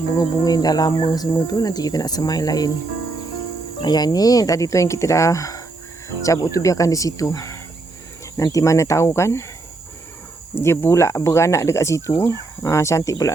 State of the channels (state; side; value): quieter; left; 3.3 dB